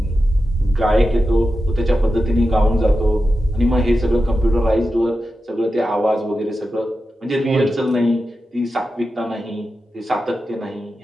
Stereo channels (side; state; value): both; normal; correlation 0.91